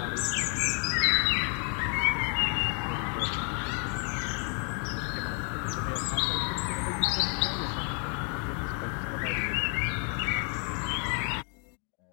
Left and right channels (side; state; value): right; quieter; 39.2 dB